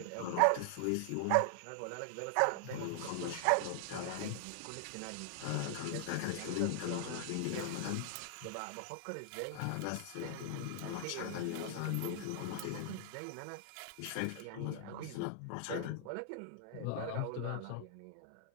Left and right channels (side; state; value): both; different; correlation 0.00